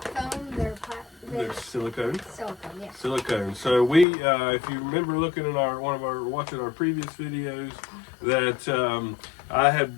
foam, they're They're silicone. Silicone, yeah. Silicone. So we, if you remember looking at watching our previous videos, that I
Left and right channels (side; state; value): right; drops out; at 4.0 s